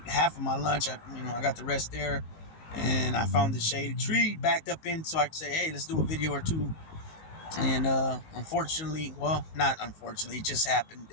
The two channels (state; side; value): late; right; 19 ms